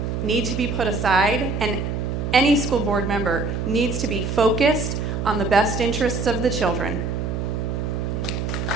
need to be put aside, and any school board member needs to be focused on the best interests of the children.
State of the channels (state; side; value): noise; right; hum, 2 dB below the sound